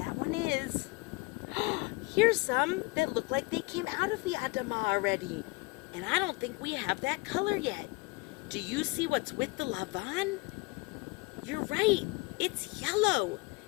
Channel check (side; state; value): right; quieter; 25.6 dB